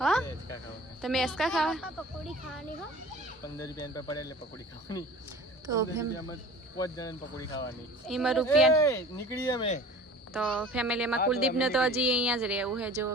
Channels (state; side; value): normal; both; correlation 0.42